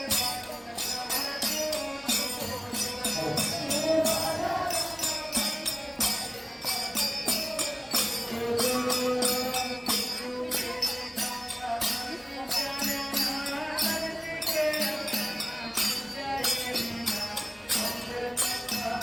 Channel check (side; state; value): both; identical; correlation 1.00